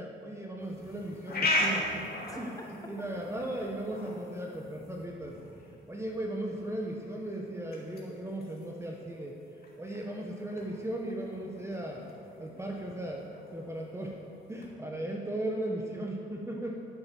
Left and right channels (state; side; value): normal; both; correlation 0.51